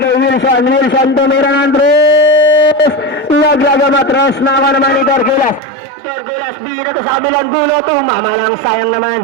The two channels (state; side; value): drops out; left; at 5.6 s